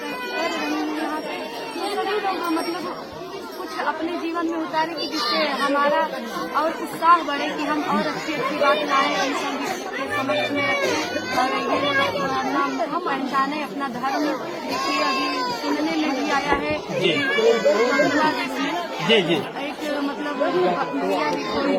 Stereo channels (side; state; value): both; identical; correlation 1.00